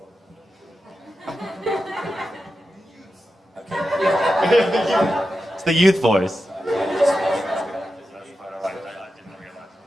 It's the youth voice.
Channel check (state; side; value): normal; both; correlation 0.90